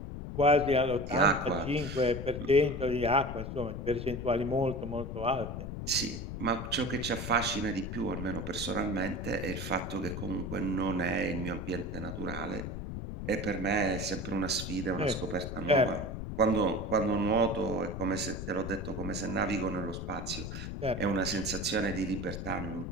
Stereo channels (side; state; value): left; noise; rumble, 6 dB below the sound